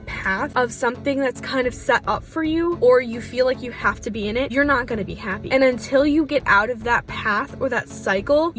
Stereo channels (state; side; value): identical; both; correlation 1.00